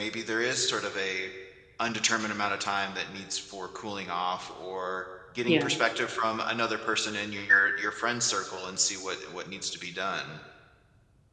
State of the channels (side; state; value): both; identical; correlation 1.00